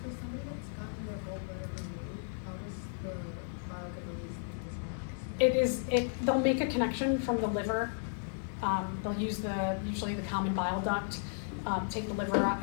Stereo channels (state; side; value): silent; right; 55 dB below the other